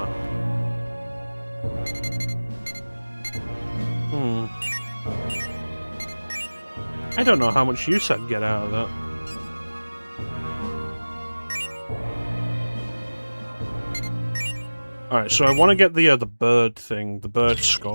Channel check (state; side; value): inverted; both; correlation -1.00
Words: I don't know how much use I'd get out of that. Alright, so I want to get the bird thing, the bird